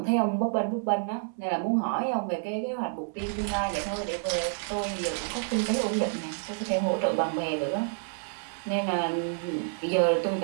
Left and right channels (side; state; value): left; silent; 59 dB below the other